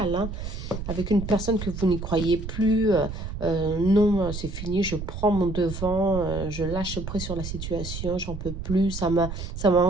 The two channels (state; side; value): noise; right; rumble, 7 dB below the sound